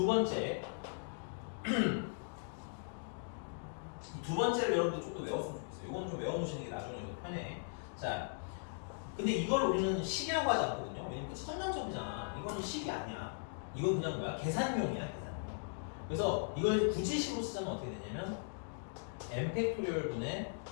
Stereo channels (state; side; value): silent; right; digital silence